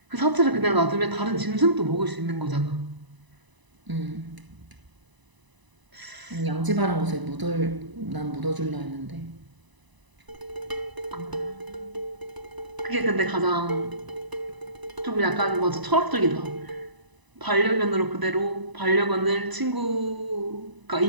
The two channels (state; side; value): late; left; 1.0 ms